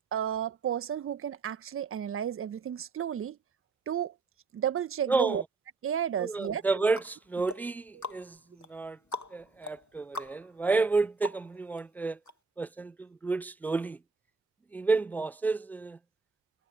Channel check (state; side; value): quieter; left; 4.5 dB